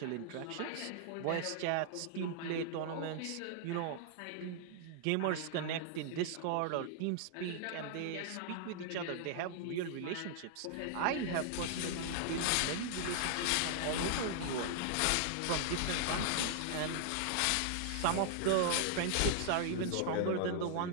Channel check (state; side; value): different; both; correlation -0.01